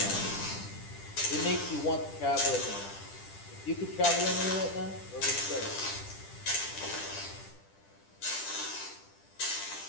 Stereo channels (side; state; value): right; late; 10 ms